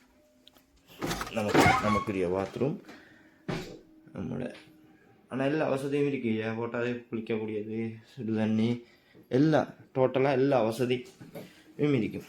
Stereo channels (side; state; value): both; identical; correlation 1.00